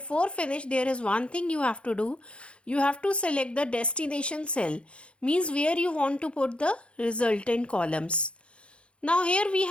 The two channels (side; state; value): right; late; 0.058 ms